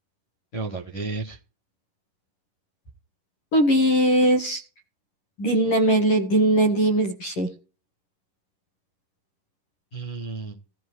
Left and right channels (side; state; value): right; late; 11 ms